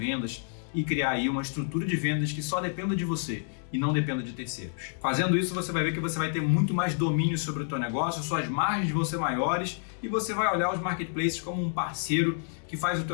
e criar aí uma estrutura de vendas que só dependa de você e não dependa de terceiros. Fazendo isso, você vai ver que você vai ter muito mais domínio sobre o teu negócio, suas margens vão ser maiores e você vai olhar os marketplaces como um parceiro que faz o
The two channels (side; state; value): right; silent; 59 dB below the other